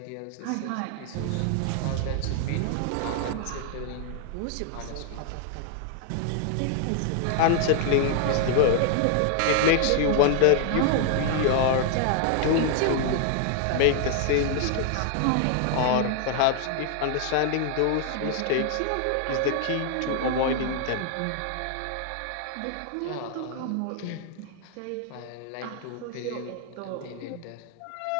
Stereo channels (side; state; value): both; different; correlation 0.00